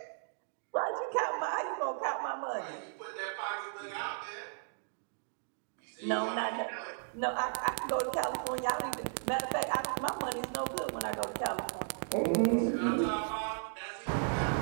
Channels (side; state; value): left; silent; digital silence